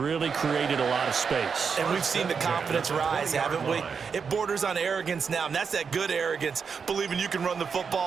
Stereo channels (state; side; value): quieter; left; 6.0 dB